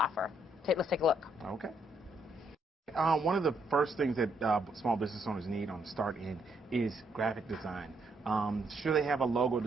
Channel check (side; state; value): both; normal; correlation 0.73